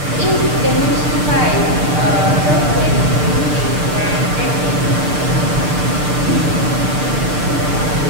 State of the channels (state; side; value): late; left; 6.7 ms